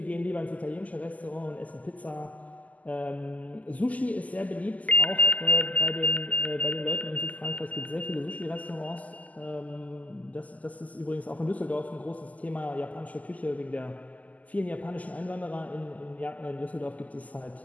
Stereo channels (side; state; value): right; late; 0.075 ms